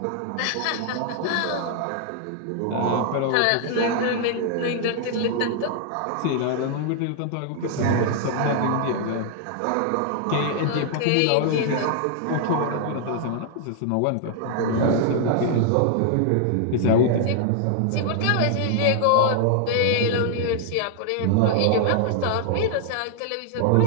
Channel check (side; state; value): both; different; correlation 0.00